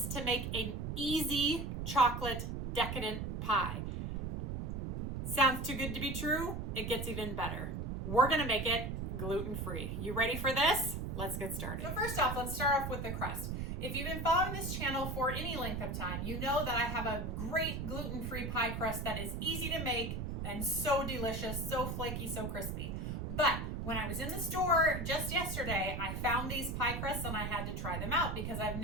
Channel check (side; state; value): right; noise; rumble, 3 dB below the sound